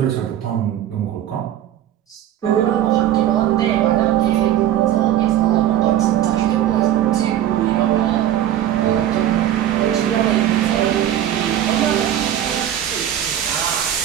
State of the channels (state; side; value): quieter; left; 11.5 dB